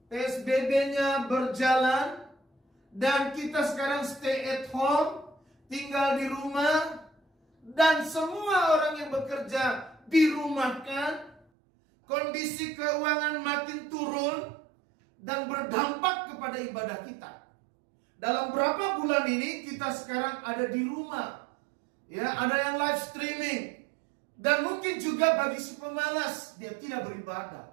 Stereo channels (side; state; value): left; drops out; at 11.4 s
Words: PSBB-nya berjalan, dan kita sekarang stay at home, tinggal di rumah, dan semua orang yang bekerja dirumahkan. Kondisi keuangan makin turun dan berdampak kepada ibadah kita. Dalam berapa bulan ini kita sekarang ada di rumah, ya, ada yang live streaming, dan mungkin juga bagi si pemalas dia tidak